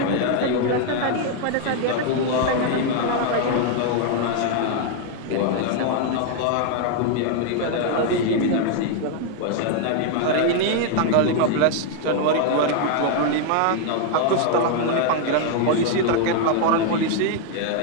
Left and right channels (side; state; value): both; different; correlation 0.00